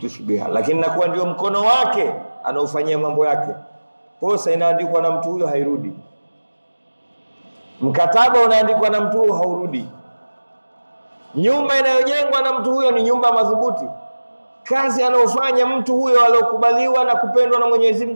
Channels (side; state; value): both; inverted; correlation -1.00